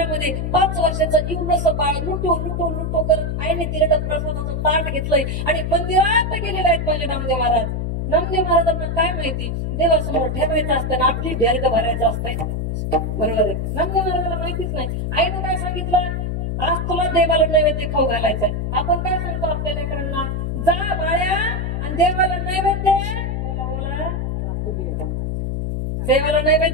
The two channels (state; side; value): noise; left; hum, 1 dB below the sound